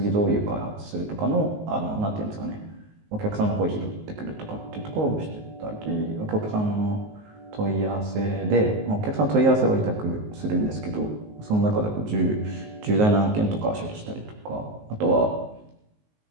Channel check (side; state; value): left; late; 19 ms